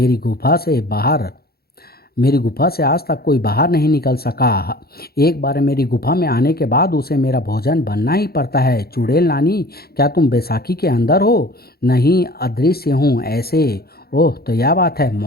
गुफा से बाहर मेरी गुफा से आज तक कोई बाहर नहीं निकल सका। एक बार मेरी गुफा में आने के बाद उसे मेरा भोजन बनना ही पड़ता है। चुड़ैल नानी, क्या तुम बैसाखी के अंदर हो? नहीं, अदृश्य हूँ ऐसे। ओह, तो यह बात है,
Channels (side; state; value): right; late; 0.45 ms